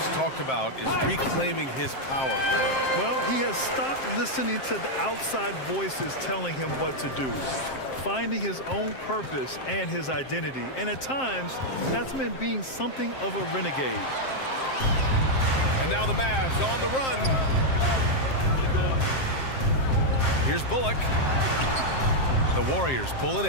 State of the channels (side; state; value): right; late; 7.6 ms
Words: talked about is reclaiming his power, Grant. Well, he has stopped listening to the outside voices telling him what to do, finding his own purpose and his identity. And at times, that's meant being something of a renegade. And now the Mavs on the run. Here's Bullock. The Warriors pull it